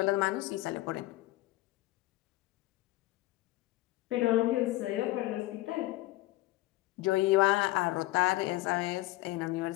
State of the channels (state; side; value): quieter; right; 18.0 dB